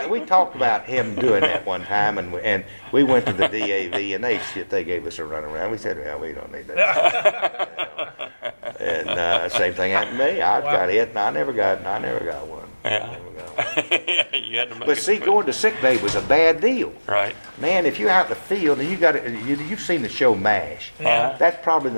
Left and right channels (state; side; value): inverted; both; correlation -1.00